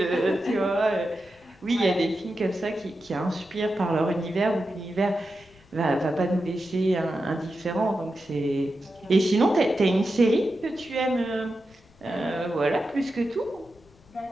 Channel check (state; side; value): noise; left; rumble, 28 dB below the sound